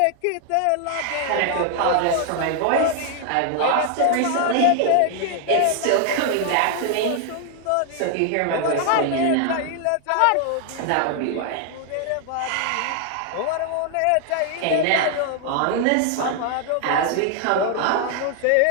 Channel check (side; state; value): both; different; correlation 0.00